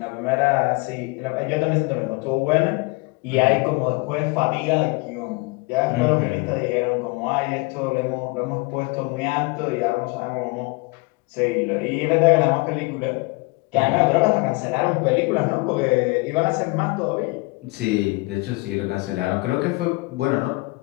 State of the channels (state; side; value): quieter; right; 26.3 dB